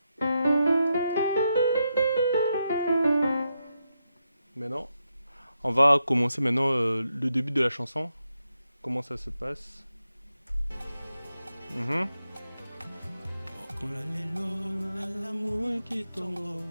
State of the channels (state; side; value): inverted; both; correlation -0.84